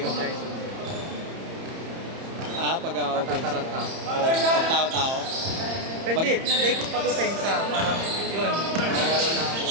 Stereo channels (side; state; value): left; late; 30 ms